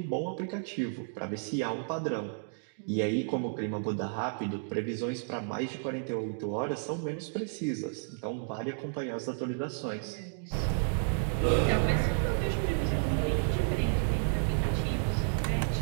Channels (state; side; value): silent; left; digital silence